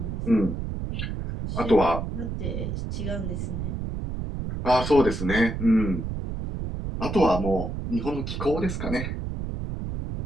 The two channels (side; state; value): right; noise; rumble, 4 dB below the sound